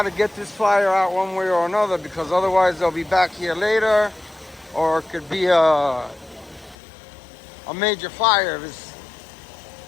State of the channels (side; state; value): right; drops out; at 6.8 s